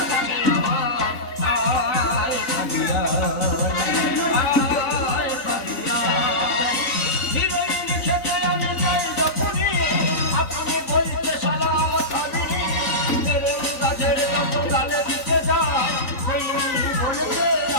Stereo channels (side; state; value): right; late; 3.9 ms